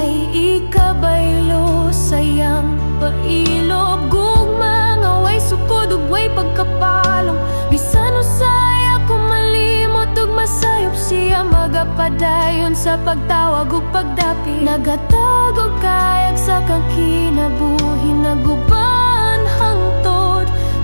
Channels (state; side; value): inverted; both; correlation -1.00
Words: ikabaylo sayang pailob. Gugma nga way sukod ug way pagkapalong, bisan usay ako malimot ug masayop siya magapadayon sa pagtawag ug pagdapi. Nagatag og kayag sa kang kinabuhi, naguban hangtod